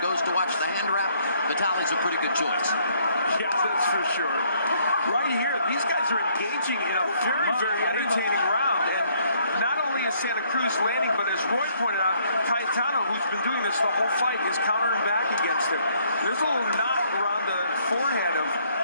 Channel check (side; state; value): both; inverted; correlation -0.66